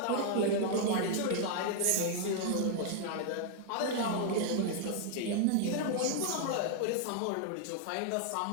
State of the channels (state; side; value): different; both; correlation 0.00